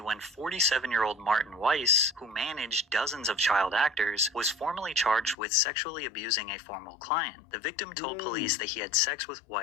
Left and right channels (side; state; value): right; drops out; at 5.4 s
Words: 47-year-old Martin Weiss, who managed dozens of child actors, was formally charged with sexually abusing a former client. The victim told police that he had sex with